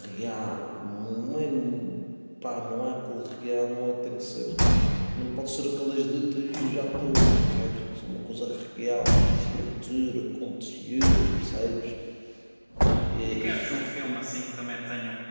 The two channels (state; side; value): inverted; both; correlation -1.00